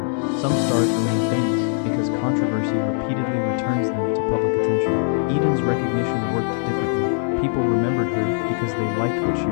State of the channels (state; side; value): silent; right; 65 dB below the other